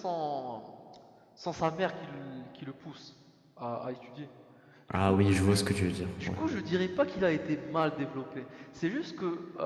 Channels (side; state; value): both; identical; correlation 1.00